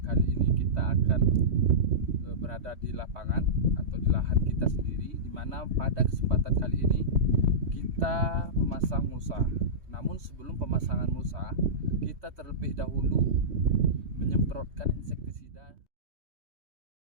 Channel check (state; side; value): late; left; 3.2 ms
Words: kali ini kita akan berada di lapangan atau di lahan kita sendiri, di mana pada kesempatan kali ini kita memasang mulsa. Namun sebelum pemasangan mulsa, kita terlebih dahulu menyemprotkan insektisida